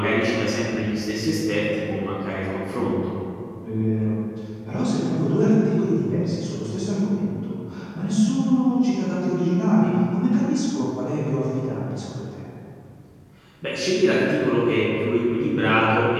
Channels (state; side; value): identical; both; correlation 1.00